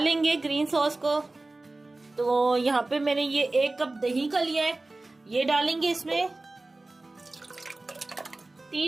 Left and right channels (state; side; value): quieter; left; 3.0 dB